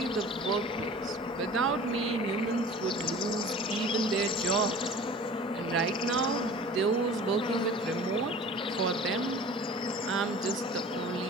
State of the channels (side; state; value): both; normal; correlation 0.42